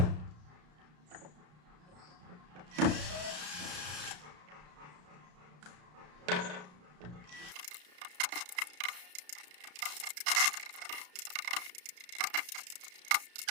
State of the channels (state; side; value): late; left; 33 ms